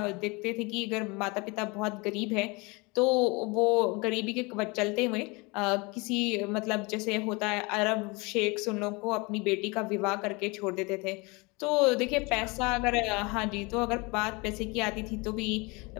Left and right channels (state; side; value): quieter; right; 27.0 dB